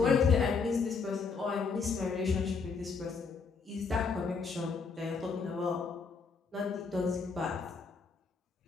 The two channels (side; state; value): right; quieter; 5.0 dB